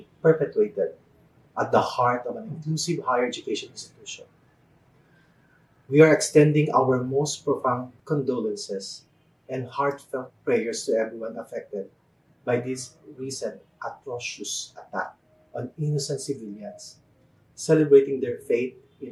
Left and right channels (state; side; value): identical; both; correlation 1.00